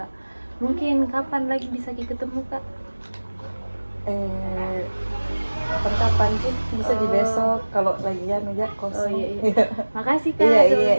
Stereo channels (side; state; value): both; inverted; correlation -1.00